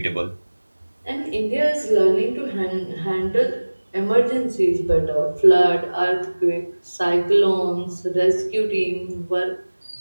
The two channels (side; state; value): both; inverted; correlation -1.00